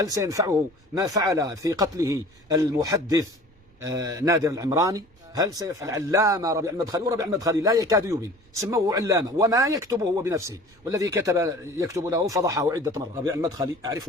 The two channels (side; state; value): right; noise; rumble, 30 dB below the sound